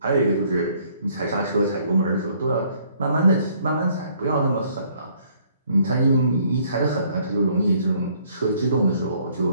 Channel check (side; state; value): both; inverted; correlation -0.63